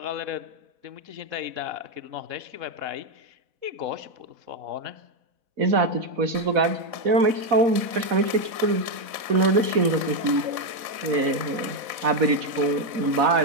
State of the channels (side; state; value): left; late; 4.1 ms